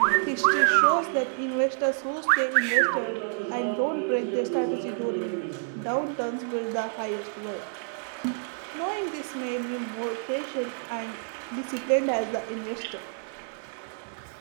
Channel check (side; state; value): left; silent; digital silence